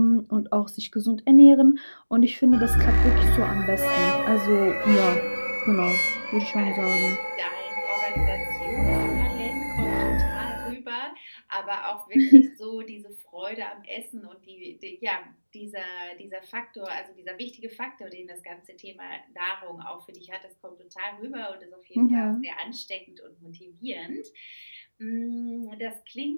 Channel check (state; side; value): inverted; both; correlation -1.00